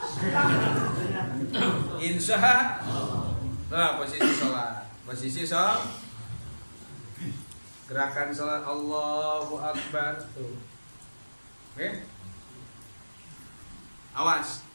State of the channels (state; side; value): inverted; both; correlation -1.00